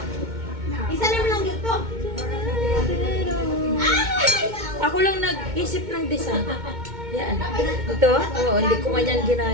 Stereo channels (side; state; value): left; late; 2.2 ms